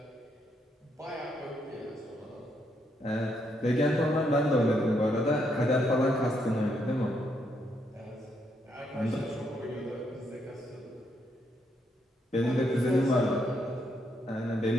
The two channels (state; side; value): normal; both; correlation 0.76